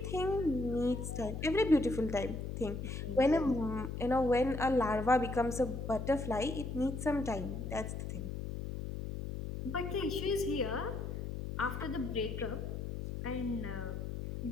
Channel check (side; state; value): left; noise; hum, 5 dB below the sound